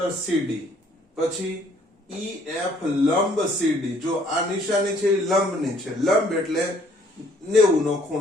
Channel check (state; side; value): normal; both; correlation 0.62